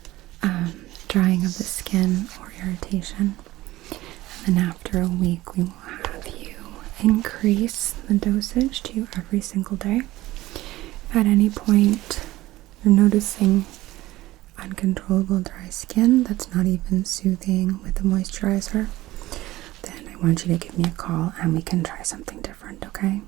drying of the skin or irritation. And then after a week, we will have you increase the dosage to every single day. If at any point you're noticing uncontrollable dry skin that's not even soothing with the moisturizer, want you to give me a call and we can try something different, okay?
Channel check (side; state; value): left; quieter; 17.2 dB